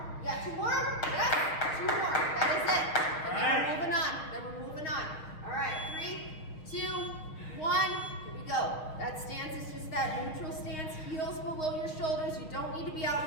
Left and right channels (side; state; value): right; late; 6.5 ms